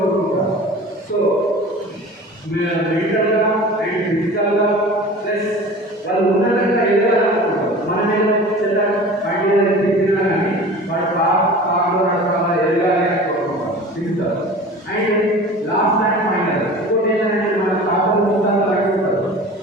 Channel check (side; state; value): both; normal; correlation 0.39